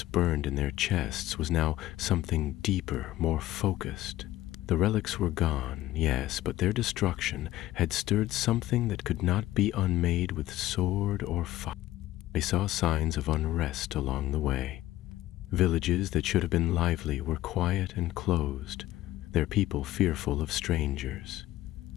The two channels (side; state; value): right; quieter; 15.2 dB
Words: burned in their chests was now something deeper, more focused. The relics were gone, yes, but their destruction had stirred something that could not be unmade with sword or fire. They saw signs of unrest along the way. Villages that should have been lively were quiet and closed, their people fearful of strangers.